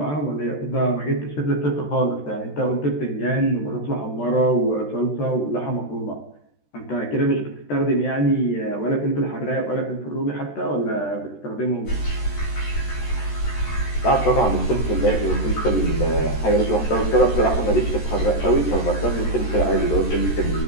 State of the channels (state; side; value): late; right; 13 ms